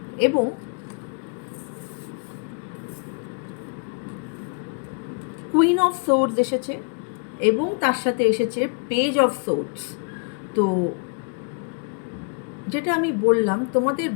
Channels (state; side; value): quieter; right; 36.7 dB